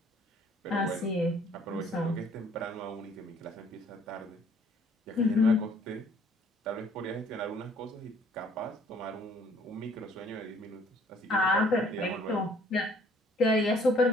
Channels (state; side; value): normal; both; correlation 0.60